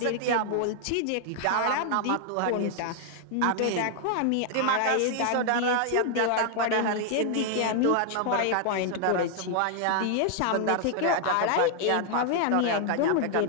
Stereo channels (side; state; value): both; different; correlation 0.00